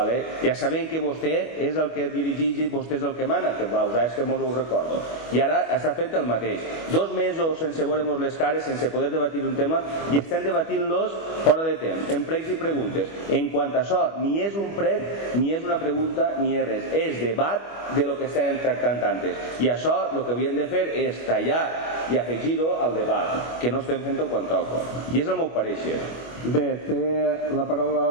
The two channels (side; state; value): right; late; 25 ms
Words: Ja sabem que vostè és el que dirigeix i vostè és el que mana, que és que mos ho recordo. I ara està fent el mateix. 2 mesos sense veure-nos les cares, sense poder debatir un tema, i estem debatint-los fora de temps, en pregs i preguntes. En quant a això, ni és un prec, ni és una pregunta, ni és res. És debat de lo que estem tractant antes. I això, el que havíem de fer és tallar i afegir-ho al debat, que no estem fent-ho quan toca. I és el meu pareixer. Bé, té la